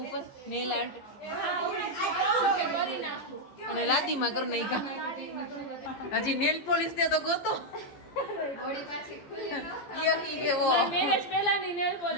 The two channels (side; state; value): right; late; 15 ms